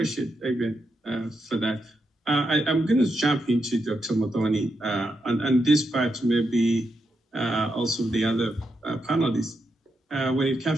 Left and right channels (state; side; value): normal; both; correlation 0.83